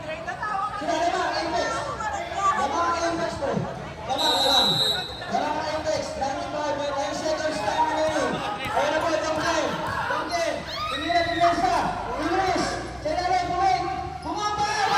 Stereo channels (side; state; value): both; identical; correlation 1.00